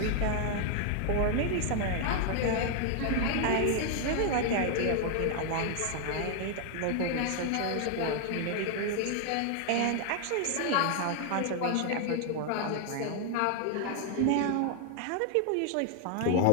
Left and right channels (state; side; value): different; both; correlation 0.00